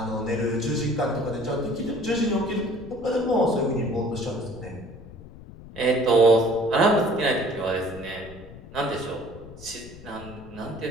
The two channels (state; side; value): noise; left; rumble, 17 dB below the sound